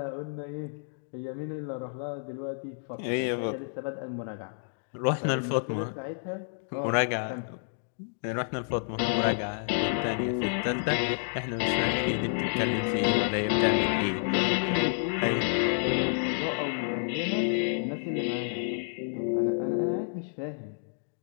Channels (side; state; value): right; silent; digital silence